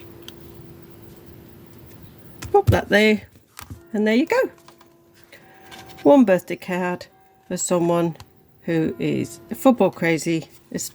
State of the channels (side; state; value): both; identical; correlation 1.00